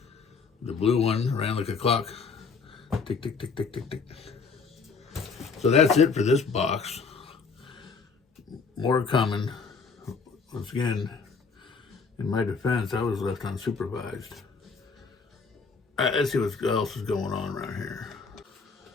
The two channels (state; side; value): quieter; right; 5.0 dB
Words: The blue one ran like a clock. Tick, tick, tick, tick, tick, tick. So that's it for this box. More coming. Once again, in my defense, I was left unsupervised. let's see what else is going on around here.